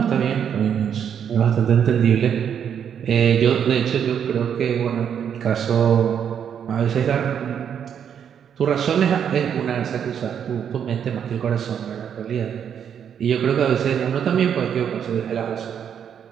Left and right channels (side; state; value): left; quieter; 8.3 dB